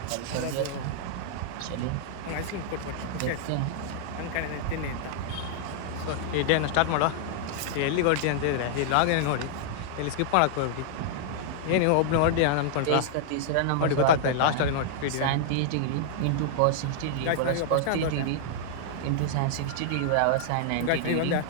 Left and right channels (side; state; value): both; different; correlation -0.01